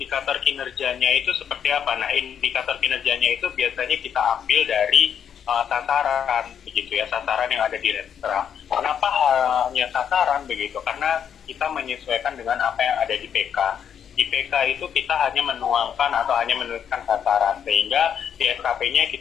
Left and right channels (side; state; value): right; quieter; 8.4 dB